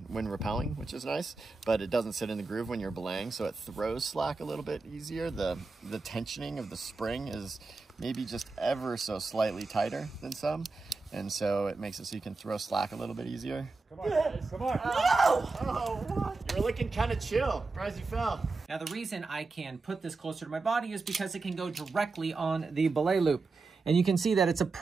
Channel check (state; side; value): quieter; left; 3.8 dB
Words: rappelling, which is nice, but it doesn't sit in the groove when you're belaying, so it throws slack a little bit easier. The tensioning of the spring is maybe just ever so slightly tighter than some, and so it makes it so you can throw slack a little bit easier. Come on, guys. Come on. No! Oh, what? You were looking kind of chill. Surprised you fell. Now, the reason I can put this closer to my body is because it can go directly on the belay loop. And you can see that it's